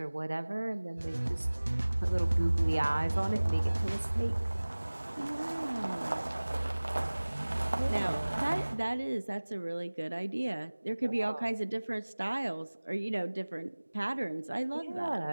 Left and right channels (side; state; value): both; inverted; correlation -1.00